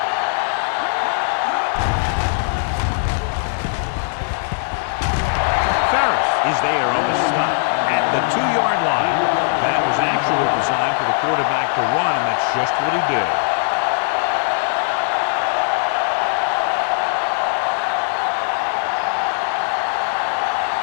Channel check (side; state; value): right; silent; digital silence